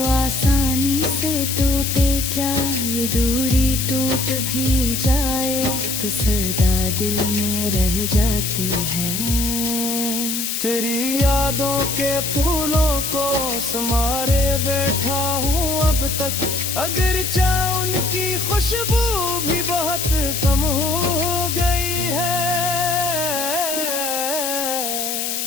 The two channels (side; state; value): left; noise; hiss, 2 dB below the sound